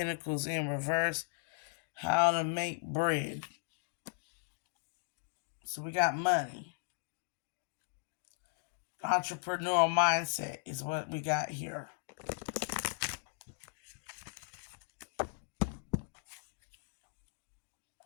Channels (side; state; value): right; silent; digital silence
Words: in reverse. How to make bread. So we got money. Entrepreneurial mindset is what we got here.